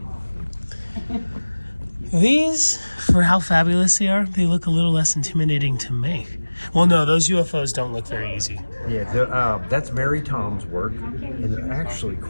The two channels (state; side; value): inverted; both; correlation -1.00